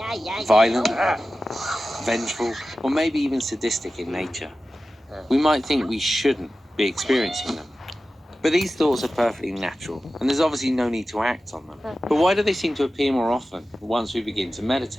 violent, vengeful, or maybe even sadistic in nature. We might think we shouldn't be experiencing them. But these thoughts are perfectly natural, and there's obviously no need to act on them. But why do they seem to appear more often once we begin to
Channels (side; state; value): both; normal; correlation 0.94